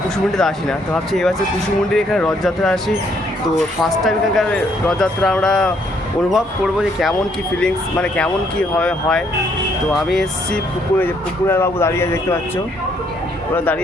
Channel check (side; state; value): both; normal; correlation 0.69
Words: কুসুমুন্ডিতে আসি না। তো ভাবছি এবার কুসুমুন্ডির এখানে রথযাত্রা আসি। তো ফার্স্ট টাইম এখানকার রথযাত্রা আমরা অনুভব করবো যে কেমন কী ফিলিংস, মানে কেমন কী হয়। তো আমি এসেছি পুকুরে, যে পুকুরের বাবু দাঁড়িয়ে আছে, দেখতে পাচ্ছ, ওরা